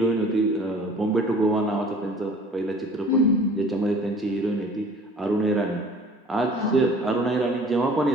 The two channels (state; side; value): normal; both; correlation 0.48